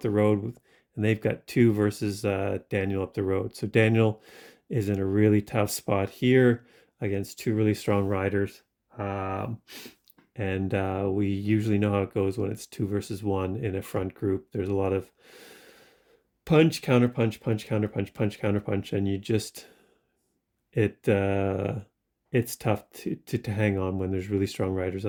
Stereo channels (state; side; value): identical; both; correlation 1.00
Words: the road, and they've got 2 versus Daniel up the road. So Daniel is in a really tough spot here against 2 really strong riders. And we usually know how it goes when it's 2 versus 1 in a front group. There's a lot of punch, counter punch, punch, counter punch, punch, counter punch, and you just, it's tough to hang on when there's really strong riders